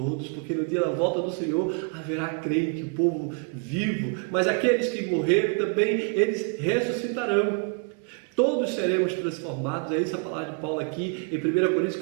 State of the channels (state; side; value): quieter; left; 35.6 dB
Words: porque no dia da volta do Senhor haverá crente, o povo vivo, mas aqueles que morreram também, eles ressuscitarão. Todos seremos transformados. É isso a palavra de Paulo aqui em 1 Coríntios